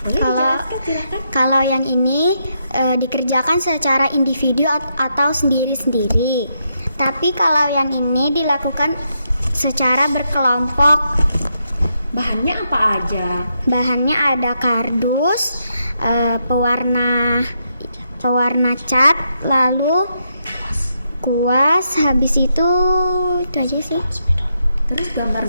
Boleh dijelaskan, silakan. Kalau yang ini dikerjakan secara individu atau sendiri-sendiri. Tapi kalau yang ini dilakukan secara berkelompok. Bahannya apa aja? Bahannya ada kardus, pewarna cat, lalu kuas, habis itu aja sih. Terus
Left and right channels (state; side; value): inverted; both; correlation -0.81